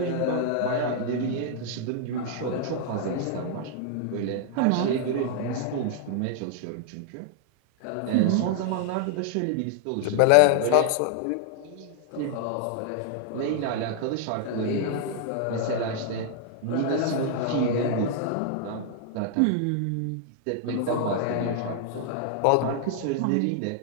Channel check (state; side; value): different; both; correlation 0.00